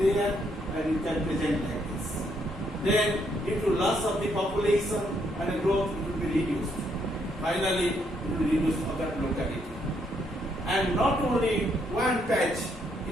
and you can present like this. Then due to loss of the population and the growth, it will be reduced. Finally, it will reduce for that locality. And not only one patch,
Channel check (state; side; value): normal; both; correlation 0.73